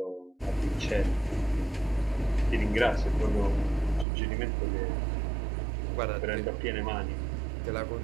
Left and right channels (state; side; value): drops out; left; at 4.0 s